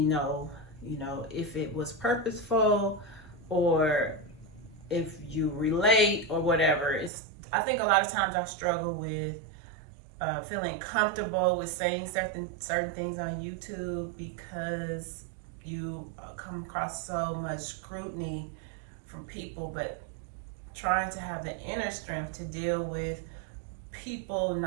know, if it was purposeful or if you relate or whatever. I think a lot of times I struggle with feeling comfortable with saying certain things on YouTube because you come across so much scrutiny from people, but trying to have the inner strength to deal with people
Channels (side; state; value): left; drops out; at 7.1 s